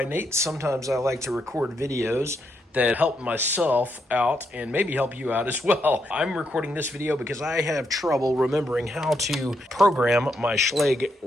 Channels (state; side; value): normal; both; correlation 0.79